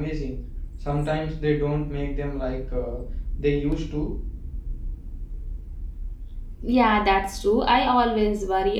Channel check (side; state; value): both; identical; correlation 1.00